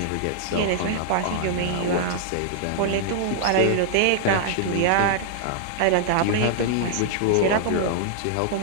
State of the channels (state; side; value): different; both; correlation -0.01